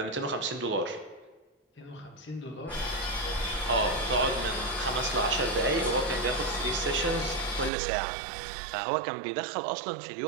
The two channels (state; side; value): drops out; left; at 7.7 s